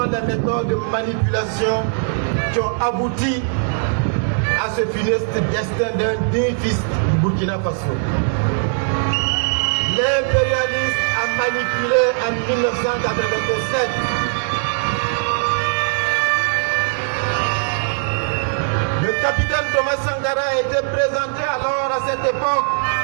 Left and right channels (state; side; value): silent; left; digital silence